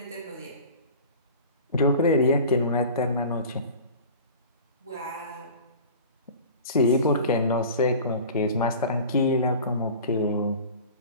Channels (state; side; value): inverted; both; correlation -0.39